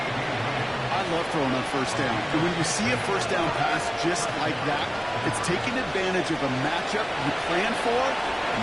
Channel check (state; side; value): identical; both; correlation 1.00